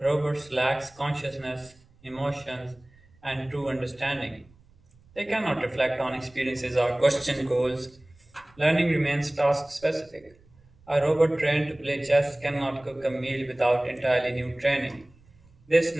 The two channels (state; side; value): noise; right; rumble, 29 dB below the sound